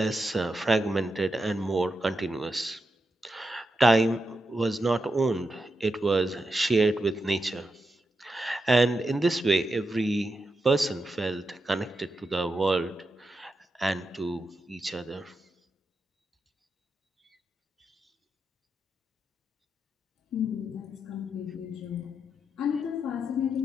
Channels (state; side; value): normal; both; correlation 0.86